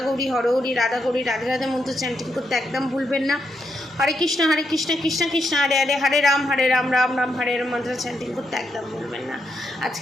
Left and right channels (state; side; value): normal; both; correlation 0.81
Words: গৌরী হরহরি, রাধা গৌরী রাধে রাধে মন্ত্র চ্যান্টিং করতে একদম ভুলবেন না। হরে কৃষ্ণ কৃষ্ণ কৃষ্ণ হরে হরে, হরে রাম রাম রাম হরে রাম মন্ত্র চ্যান্টিং করতে একদম ভুলবেন না।